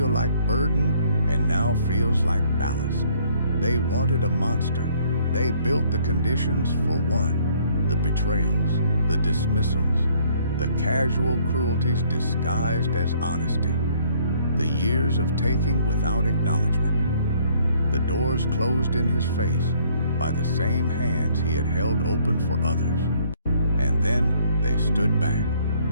like burden and now feels like ballast. They wanted a monster. They built the conditions for one. The betrayals, the dismissals, the casual cruelties disguised as honesty. The years of taking without acknowledgement. The doors closed in his face by the same hands he had held open for others. And then they stood back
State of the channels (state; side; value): inverted; both; correlation -0.62